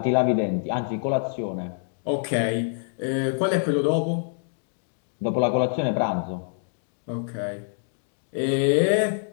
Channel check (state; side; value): silent; right; digital silence